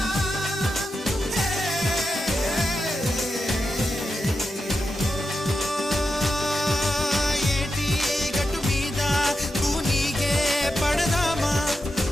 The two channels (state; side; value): normal; both; correlation 0.88